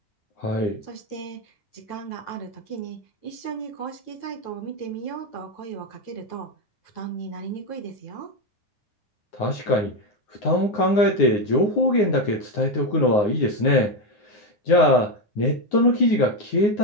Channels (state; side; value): late; right; 9.6 ms